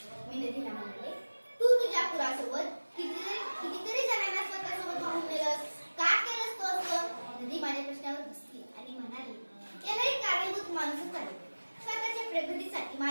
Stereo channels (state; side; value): inverted; both; correlation -1.00